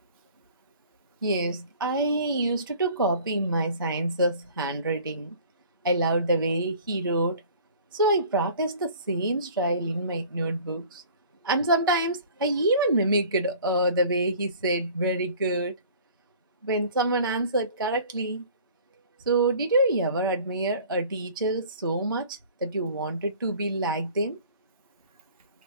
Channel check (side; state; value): both; inverted; correlation -0.48